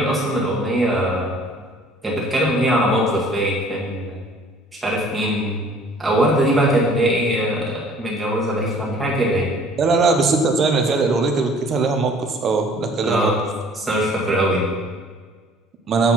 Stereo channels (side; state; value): both; normal; correlation 0.54